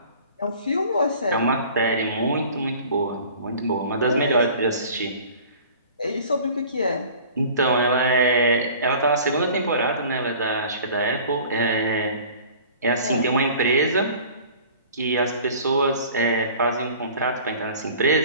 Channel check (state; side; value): inverted; both; correlation -0.46